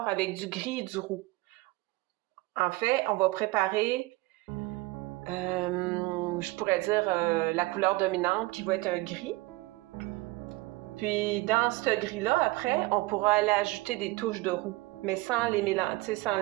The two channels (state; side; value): quieter; left; 21.6 dB